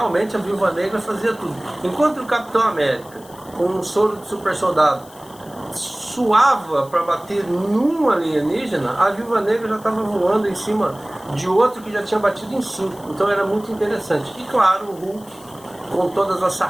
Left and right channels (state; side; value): noise; left; hiss, 23 dB below the sound